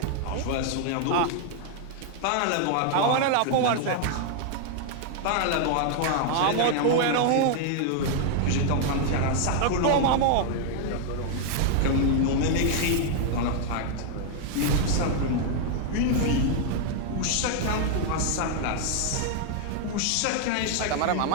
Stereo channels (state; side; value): different; both; correlation 0.00